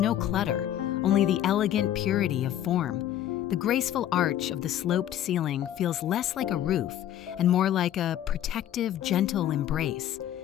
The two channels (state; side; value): quieter; right; 11.5 dB